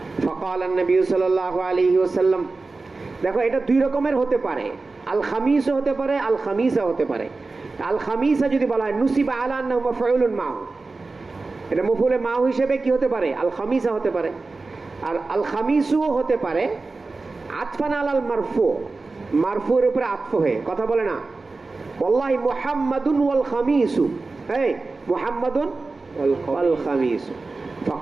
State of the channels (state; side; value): quieter; left; 3.7 dB